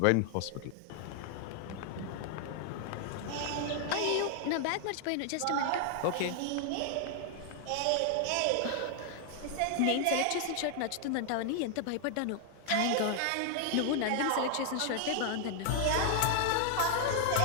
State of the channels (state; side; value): different; both; correlation 0.00